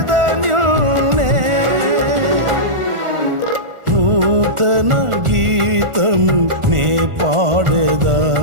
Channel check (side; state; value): left; late; 1.4 ms